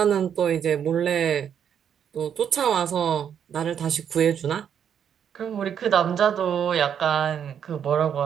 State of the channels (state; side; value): quieter; left; 8.4 dB